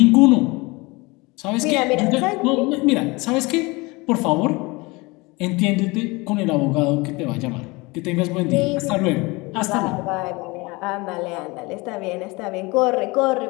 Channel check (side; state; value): right; quieter; 24.6 dB